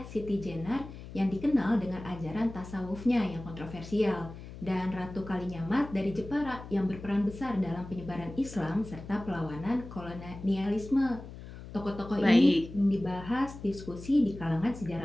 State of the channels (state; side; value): noise; left; hum, 13 dB below the sound